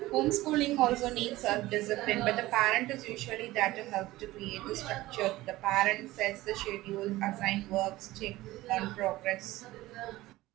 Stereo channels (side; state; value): left; quieter; 17.7 dB